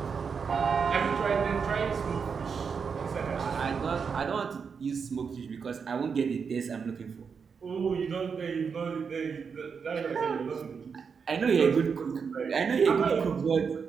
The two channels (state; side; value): quieter; left; 6.0 dB